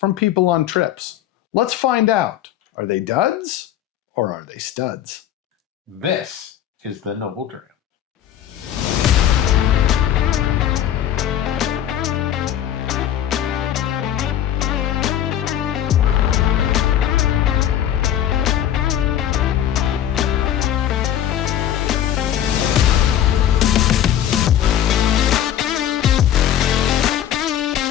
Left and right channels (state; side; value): quieter; right; 10.8 dB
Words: people on trips. Let's find out. Are they duds or are they studs? This is the Noble Dram.